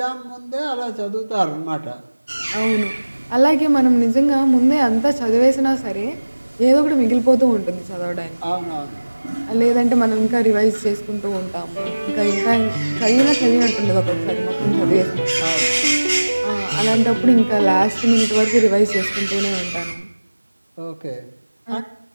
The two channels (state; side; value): inverted; both; correlation -1.00